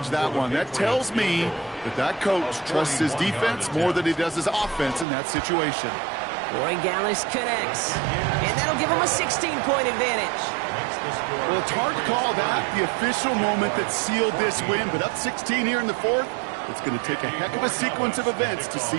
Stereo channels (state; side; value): drops out; left; at 5.1 s